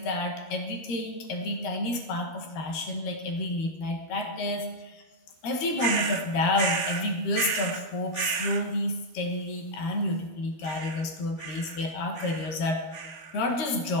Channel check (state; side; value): late; right; 13 ms